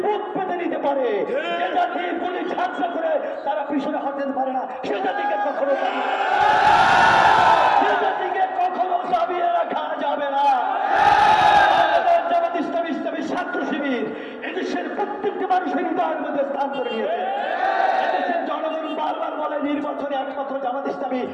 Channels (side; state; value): both; identical; correlation 1.00